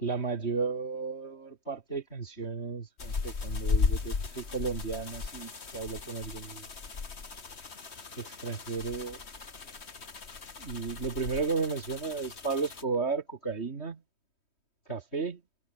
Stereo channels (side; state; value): right; late; 3.2 ms